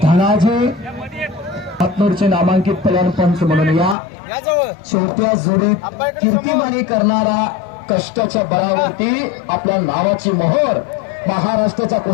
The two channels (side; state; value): right; drops out; at 4.0 s